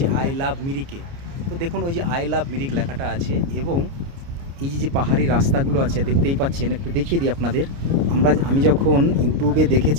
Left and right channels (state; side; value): late; left; 29 ms